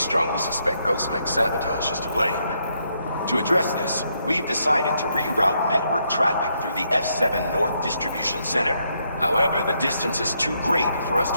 suspect Ghostmech sabotage is to blame. To address this, we've decided to reroute network traffic through the F7 North Distribution Center. However, the distance is too great for us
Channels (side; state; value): both; inverted; correlation -0.76